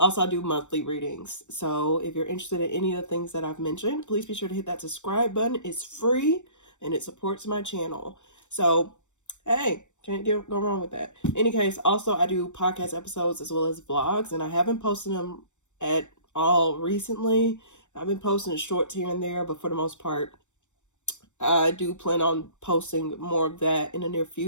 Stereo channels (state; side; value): late; right; 0.84 ms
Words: I do monthly readings. So if you're interested in any of the things that I've mentioned, please be sure to hit that subscribe button. It's free and it supports my channel. So, hey, can't go wrong with that. In any case, also I do podcast episodes as well as vlogs, and I haven't posted them at all recently. I've been posting shorts here and there, but for the most part, I do plan on posting more of that in the near